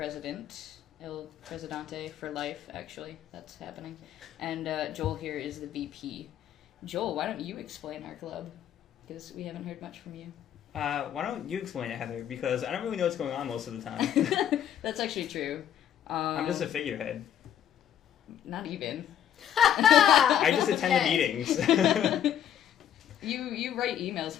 El Presidente for life, actually. That's happening. And Joel here is the VP. Joel, why don't you explain our club? Because we haven't heard much from you. Why don't you explain it, Heather? Because I don't really know what's going on most of the time. That's actually true. I'm just a figurehead. Not even. I just attend the Okay. meetings. You write emails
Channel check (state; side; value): quieter; right; 10.0 dB